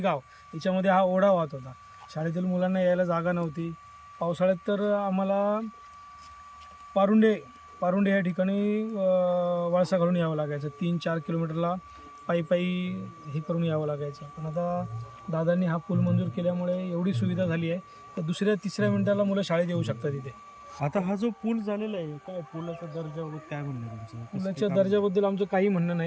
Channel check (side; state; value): both; identical; correlation 1.00